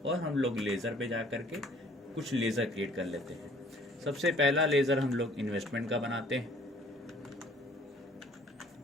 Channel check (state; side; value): normal; both; correlation 0.56